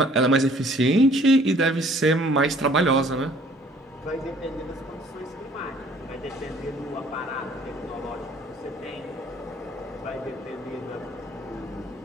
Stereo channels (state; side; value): normal; both; correlation 0.57